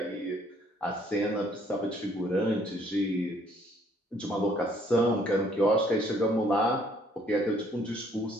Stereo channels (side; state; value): both; normal; correlation 0.63